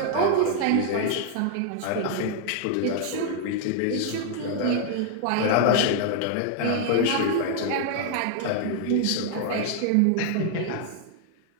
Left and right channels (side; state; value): both; different; correlation 0.00